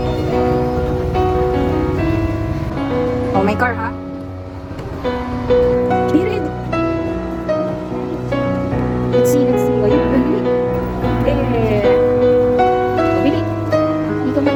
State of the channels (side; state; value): both; identical; correlation 1.00